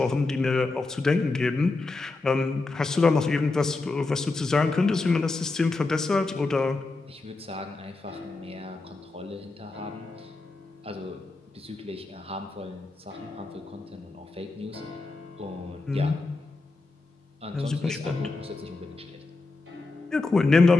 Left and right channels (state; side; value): quieter; right; 3.5 dB